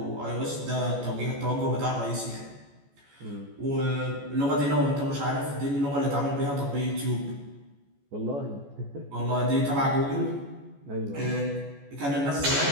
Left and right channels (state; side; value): late; left; 14 ms